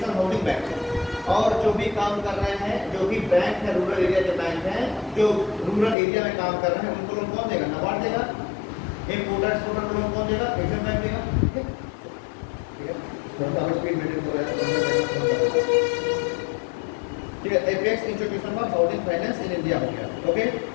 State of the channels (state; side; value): drops out; right; at 6.0 s